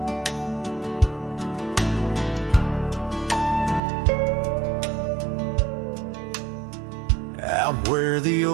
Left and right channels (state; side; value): drops out; left; at 3.8 s